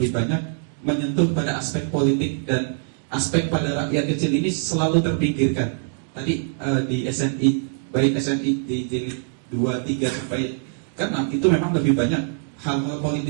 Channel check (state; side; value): silent; left; digital silence